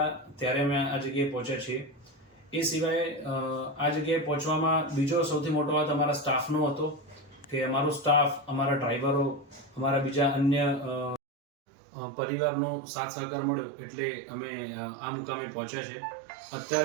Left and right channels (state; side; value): drops out; left; at 11.2 s